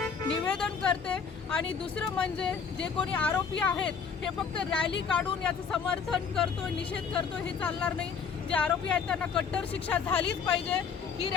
निवेदन करते। आणि दुसरं म्हणजे जे कोणी आरोपी आहेत हे फक्त रॅली काढून याचं समर्थन करतोय, निषेध करतोय, हे चालणार नाही। जे आरोपी आहेत त्यांना कट्टर शिक्षा झालीच पाहिजे। ही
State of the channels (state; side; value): quieter; right; 6.2 dB